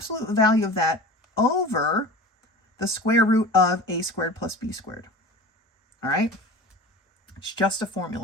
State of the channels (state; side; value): normal; both; correlation 0.36